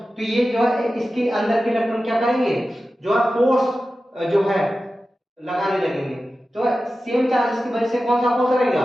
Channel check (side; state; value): both; normal; correlation 0.94